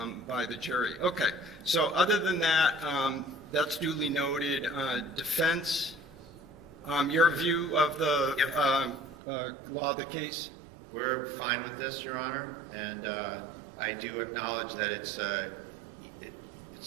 by the jury. Okay, so other than that, that's duly noted. Defense, your view of the law of the case? We're fine with this, Your Honor, and I do acknowledge that it's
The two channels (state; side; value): drops out; left; at 9.2 s